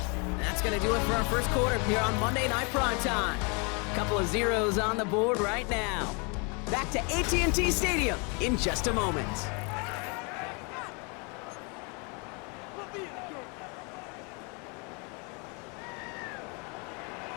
That's going to do it for our first quarter here on Monday Night Prime Time. Couple of zeros on the board right now. Back to AT&T Stadium in just a moment.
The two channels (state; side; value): quieter; right; 32.9 dB